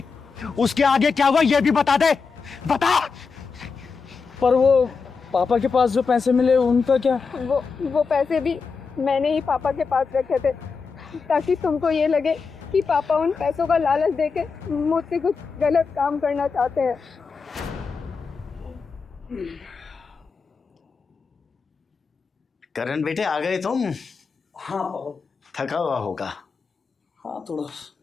उसके आगे क्या हुआ ये भी बता दे, बता। पर वो पापा के पास जो पैसे मिले उनका क्या? वो पैसे भी मैंने ही पापा के पास रखे थे, ताकि तुमको ये लगे कि पापा उन पैसों का लालच देके मुझसे कुछ गलत काम करना चाहते हैं। करण बेटे, आ गए तुम? हाँ पापा। थका हुआ होगा। हाँ थोड़ा।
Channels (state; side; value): quieter; right; 5.1 dB